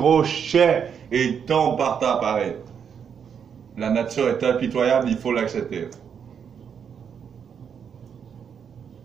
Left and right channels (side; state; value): left; quieter; 7.4 dB